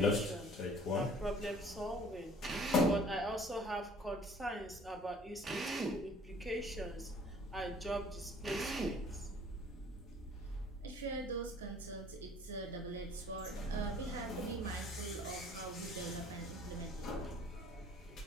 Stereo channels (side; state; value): both; normal; correlation 0.53